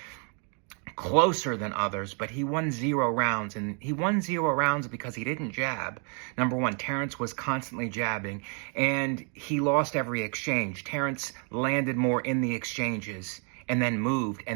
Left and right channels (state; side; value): quieter; left; 39.9 dB